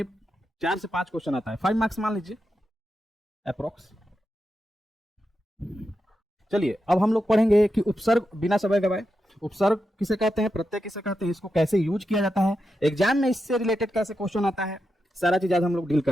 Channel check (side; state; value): both; normal; correlation 0.87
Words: 4 से 5 क्वेश्चन आता है, 5 मार्क्स मान लीजिए अप्रोक्स। चलिए अब हम लोग पढ़ेंगे कि उपसर्ग, बिना समय गवाए, उपसर्ग किसे कहते हैं, प्रत्यय किसे कहते हैं, इसको कैसे यूज किया जाता है, एग्जाम में इससे रिलेटेड कैसे क्वेश्चन आता है, सारा चीज आज हम लोग डील